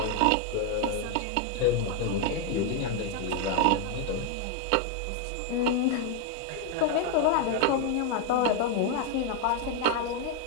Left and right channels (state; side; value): different; both; correlation 0.01